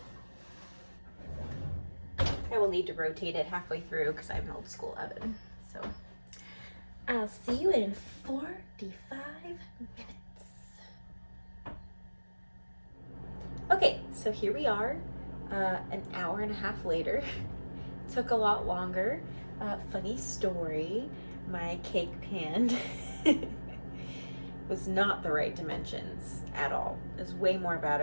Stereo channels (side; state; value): both; inverted; correlation -1.00